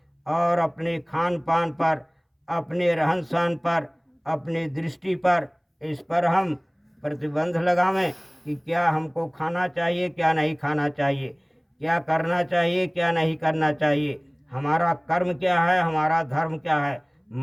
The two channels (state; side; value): identical; both; correlation 1.00